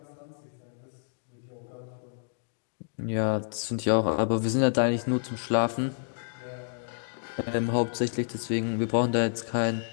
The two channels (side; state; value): right; silent; digital silence